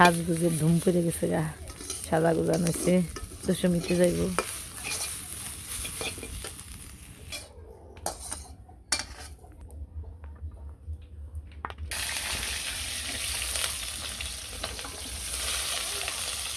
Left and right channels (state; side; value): identical; both; correlation 1.00